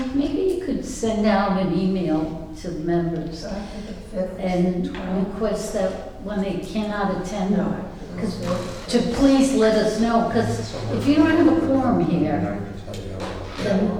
maybe you could send out an email to the members So I think the 5th. and request that when they cannot attend, No. because to please let us know, because if you don't have a quorum And here, I can tell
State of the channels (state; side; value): identical; both; correlation 1.00